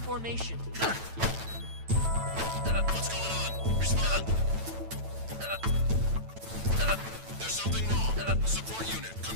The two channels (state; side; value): late; left; 9.0 ms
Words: What's going on? Respond. There's something wrong. Support unit,